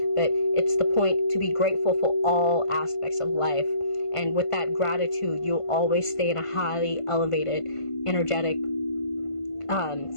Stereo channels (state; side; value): late; right; 1.5 ms